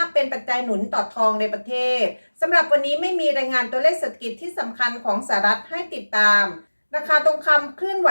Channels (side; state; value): both; inverted; correlation -1.00